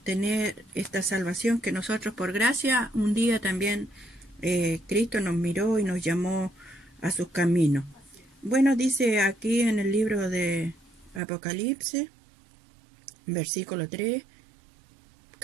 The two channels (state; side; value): drops out; left; at 11.2 s